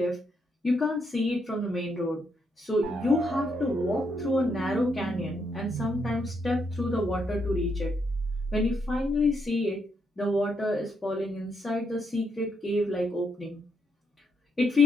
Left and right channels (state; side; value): normal; both; correlation 0.78